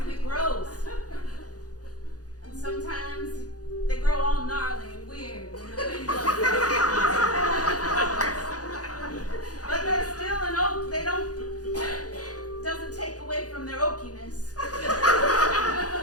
it grows. And sometimes they grow all gnarly and weird when the wind blows. But they're still an oak. They doesn't take away from their oakiness.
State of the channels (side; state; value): right; late; 0.68 ms